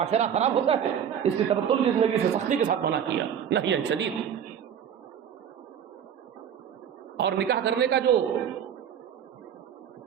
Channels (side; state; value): left; quieter; 8.6 dB